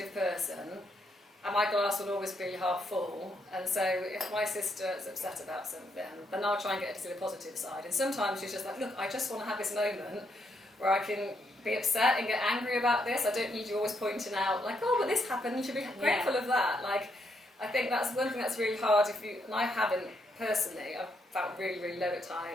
person, and my glass will always be half full. And so if my sister is upset about something, then I'll try and get her to see the positive side. And sometimes she's just like, look, I just want to have this moment where I can be upset and get angry about this. I don't need you always pointing out, like, oh, but this happened, you should be grateful of that. Like, I think that's one thing that's really hard and I haven't personally, I've felt really, really low at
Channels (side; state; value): both; normal; correlation 0.76